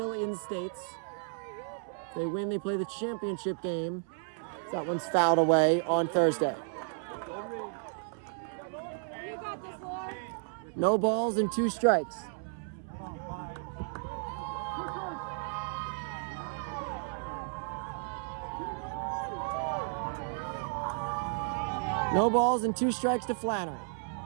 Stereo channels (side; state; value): left; silent; 56 dB below the other